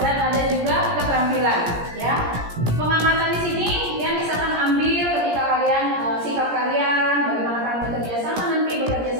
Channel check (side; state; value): left; late; 17 ms